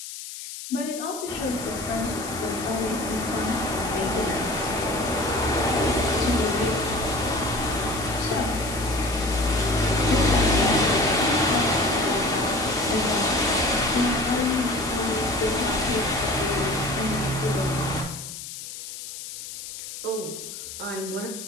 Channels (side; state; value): left; noise; hiss, 10 dB below the sound